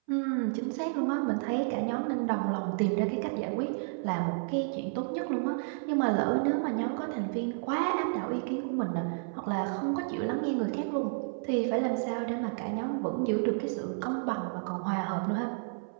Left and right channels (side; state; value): left; silent; 57 dB below the other